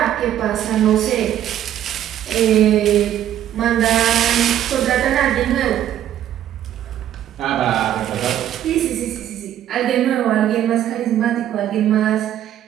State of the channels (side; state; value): left; quieter; 11.3 dB